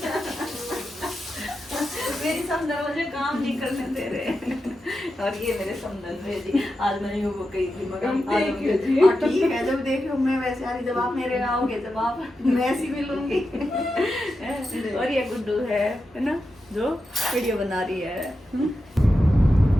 मेरी समदन मुझे काम नहीं करने दे रहे। और ये मेरे समदन है जी, आज मैंने वो कही थी मगर ठीक है, जब देखो मैं वैसे आ रही, जब आप मेरे आओगे जब आप मैं ऐसी मिलूंगी। और ये गुड्डू है ना जो वीडियो बना रही है।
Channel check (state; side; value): normal; both; correlation 0.89